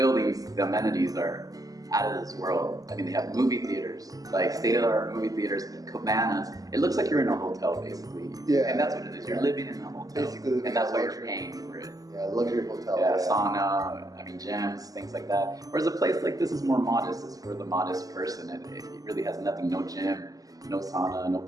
the amenities are out of this world. I mean, they have movie theaters, like state-of-the-art movie theaters, cabanas. It looks like you're in a hotel, basically. Yeah. And that's what it is. You're living in a hotel. Basically, and that's why you're paying for it. Yeah, luxury hotel. Yeah, sauna, I mean, gyms, things like that. Whereas a place like this is more modest. It's for the modest person. It really has nothing, no gym, no sauna, no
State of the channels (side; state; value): left; late; 0.17 ms